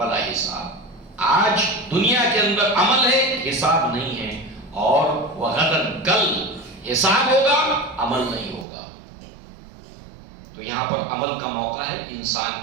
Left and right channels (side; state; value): left; drops out; at 8.7 s